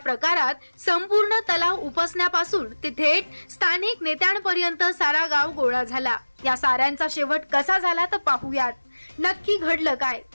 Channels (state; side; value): inverted; both; correlation -1.00